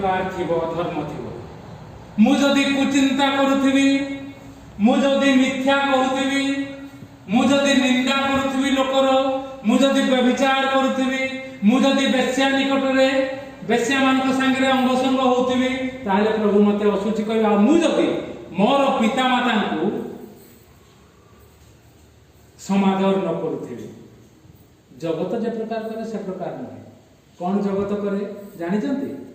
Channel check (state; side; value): identical; both; correlation 1.00